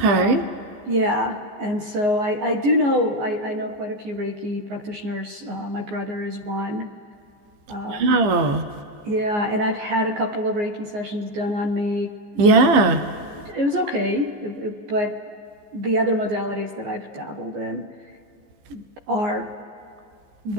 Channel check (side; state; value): left; late; 14 ms